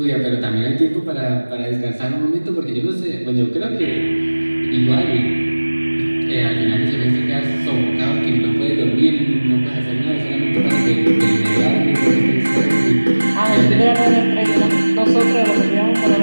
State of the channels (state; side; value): inverted; both; correlation -1.00